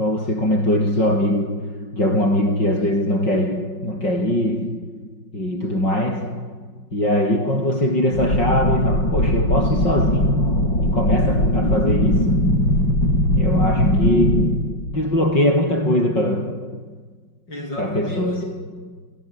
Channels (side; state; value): right; late; 5.5 ms